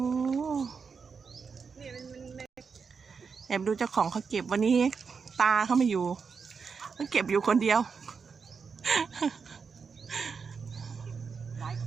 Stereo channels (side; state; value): left; quieter; 5.6 dB